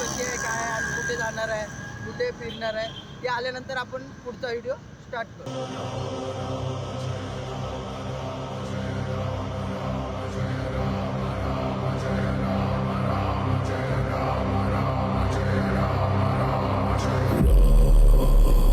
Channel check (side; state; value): both; identical; correlation 1.00